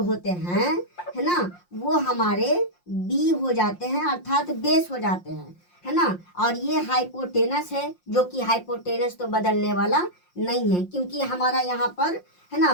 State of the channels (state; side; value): late; right; 5.7 ms